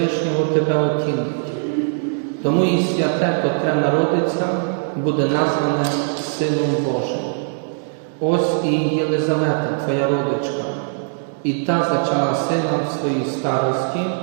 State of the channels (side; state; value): left; silent; digital silence